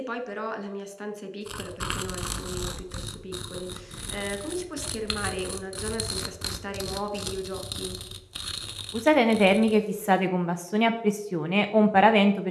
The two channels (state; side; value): identical; both; correlation 1.00